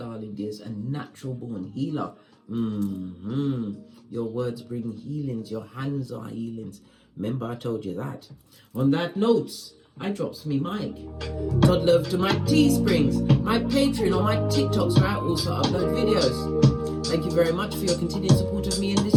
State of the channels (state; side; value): identical; both; correlation 1.00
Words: dears, a natural born healer. Your words bring healings. Your hands are healings. Remember, I told you that. On that note, I drops me mic. Todd love to my Teesprings, my Patreon, or my TikToks where I also upload videos. Thank you very much for your continued support of me in